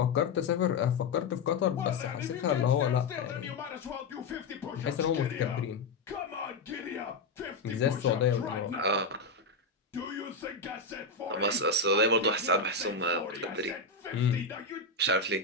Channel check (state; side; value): quieter; right; 3.8 dB